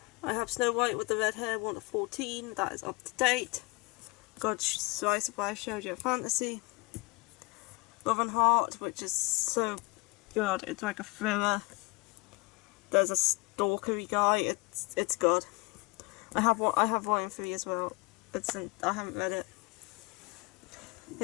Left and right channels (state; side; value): quieter; right; 27.4 dB